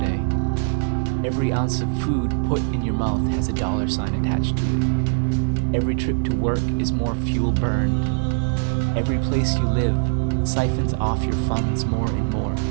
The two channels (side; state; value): left; silent; digital silence